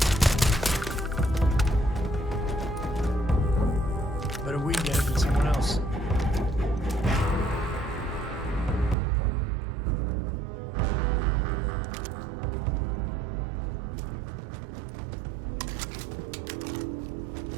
Better we get it than someone else.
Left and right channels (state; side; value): drops out; left; at 9.0 s